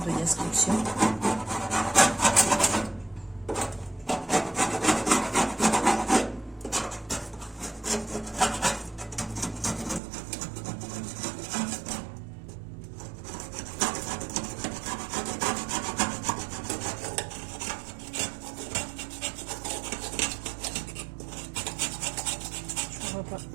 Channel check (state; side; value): drops out; left; at 10.0 s